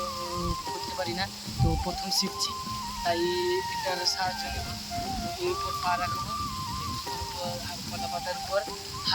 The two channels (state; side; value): identical; both; correlation 1.00